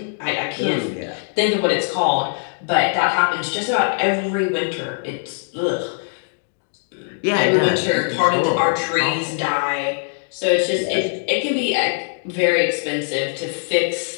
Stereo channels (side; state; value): right; silent; digital silence